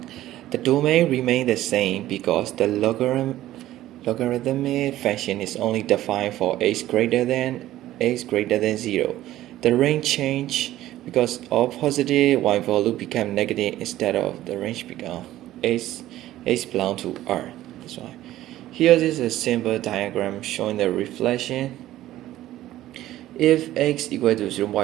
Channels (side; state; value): left; quieter; 14.4 dB